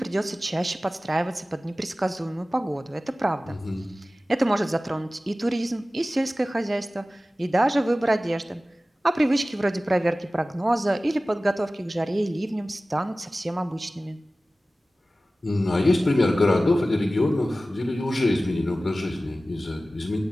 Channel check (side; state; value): both; normal; correlation 0.96